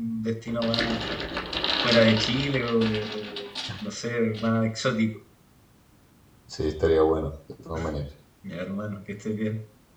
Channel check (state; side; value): identical; both; correlation 1.00